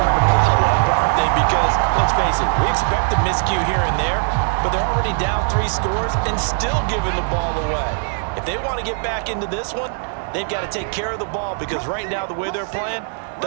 to pile up, aren't they? Because, let's face it, we expect a miscue here and there, but they're already down 3 scores and still giving the ball away. If they want to get back into this one, they've got to take care of the ball, because right now the way they're playing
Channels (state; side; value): silent; left; 59 dB below the other